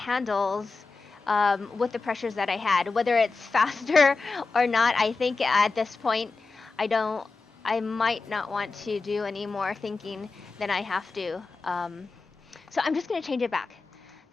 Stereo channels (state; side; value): quieter; right; 4.0 dB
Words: with the pressures that I had. Whether it's faster or not, I think at this point, I might not want to do any more thinking than I have to. So I'm just going to change it back.